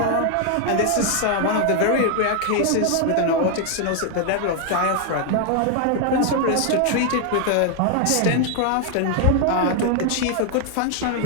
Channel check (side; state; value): both; different; correlation 0.00